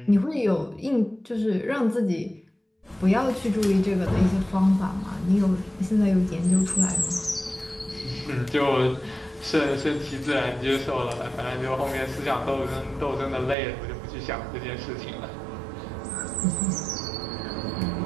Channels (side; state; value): left; drops out; at 13.6 s